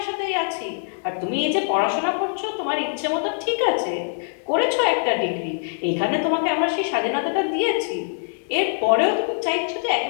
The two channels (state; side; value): silent; right; digital silence